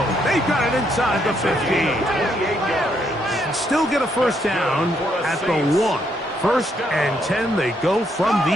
They got it inside the 15. Still get a first down at the 1. First and 10, they go from the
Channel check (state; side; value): normal; both; correlation 0.74